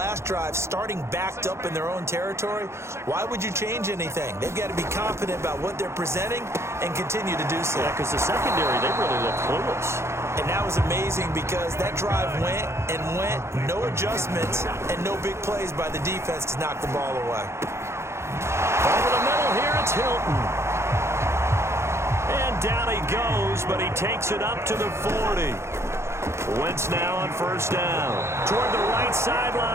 drive, starting backed up in their own territory, why would you change anything? They've got to be confident about what they're presenting and continue to do so. Yeah, because the secondary, they really look clueless. And that was amazing because that drive went and went, no adjustments, and no big plays by the defense to knock the ball away. Over the middle here, it's Hilton. And down he goes, but he takes it up to the 40. Wentz now on 1st down. Toward the right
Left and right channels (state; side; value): late; left; 0.13 ms